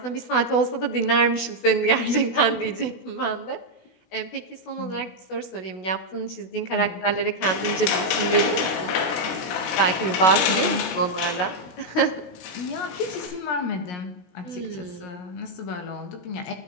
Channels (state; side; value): late; right; 16 ms